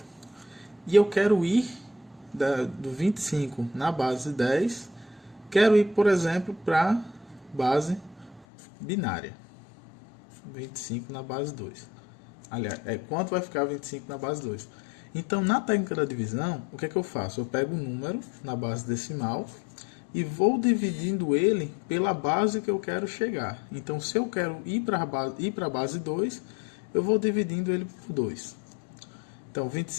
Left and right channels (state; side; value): drops out; right; at 8.5 s